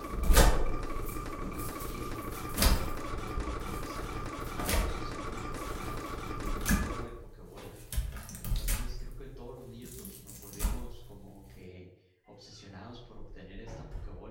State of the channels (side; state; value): both; identical; correlation 1.00